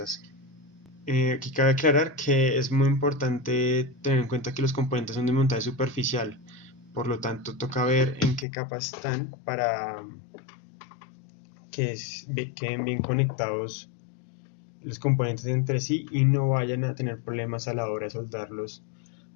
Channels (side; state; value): right; drops out; at 8.5 s